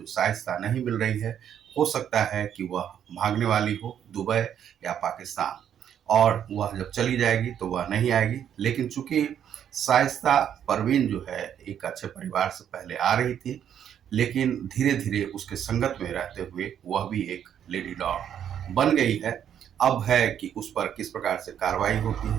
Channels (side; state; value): left; quieter; 9.4 dB